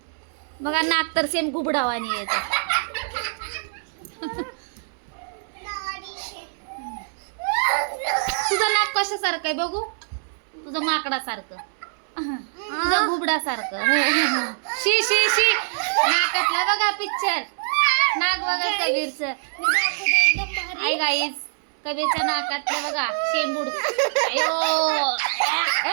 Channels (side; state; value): left; silent; 63 dB below the other